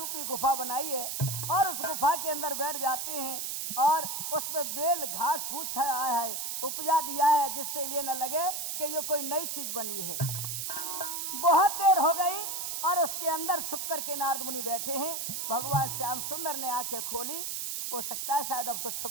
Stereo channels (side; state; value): right; noise; hiss, 3 dB below the sound